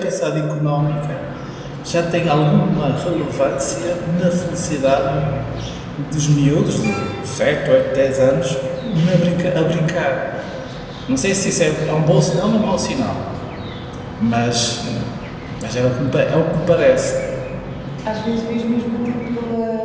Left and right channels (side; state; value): both; identical; correlation 1.00